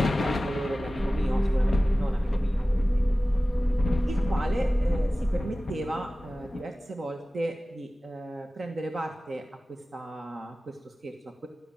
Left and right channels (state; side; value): normal; both; correlation 0.97